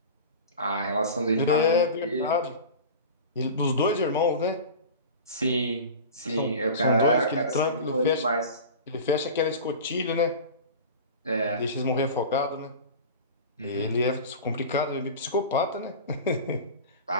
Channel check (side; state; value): both; inverted; correlation -0.33